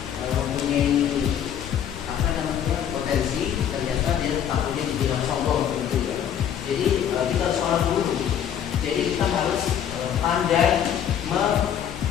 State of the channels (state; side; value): quieter; right; 9.3 dB